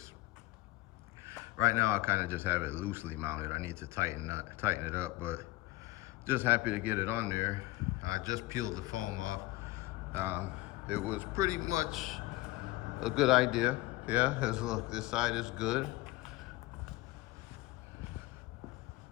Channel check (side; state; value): right; quieter; 18.6 dB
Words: Right now, I kind of just have it loosely mounted. I need to tighten it up, but just happy to get it on there. I just peeled the foam off. It was pretty much a good idea. Yeah, look, this side is good.